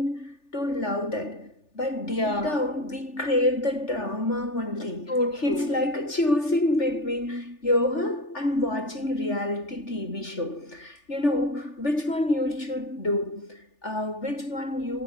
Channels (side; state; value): right; late; 3.4 ms